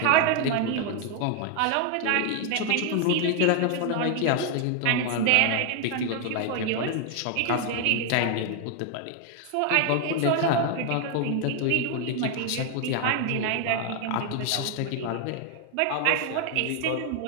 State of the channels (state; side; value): different; both; correlation 0.01